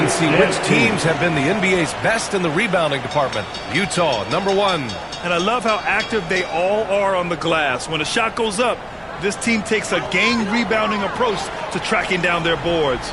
see which teams have been the NBA's best in the rebounding department. Utah, number 1. And I love how active they all are on the glass. When a shot goes up, this team takes a game rebounding approach to tracking down their boards.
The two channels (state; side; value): identical; both; correlation 1.00